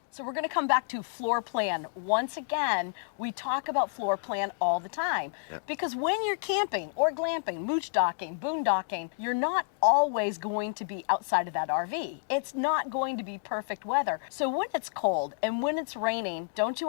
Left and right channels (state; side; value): silent; right; digital silence